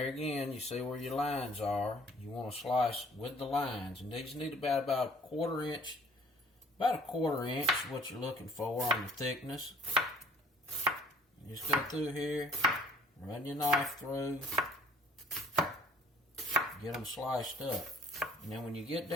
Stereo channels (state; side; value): normal; both; correlation 0.55